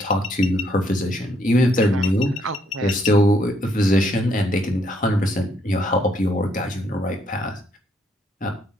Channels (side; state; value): both; normal; correlation 0.71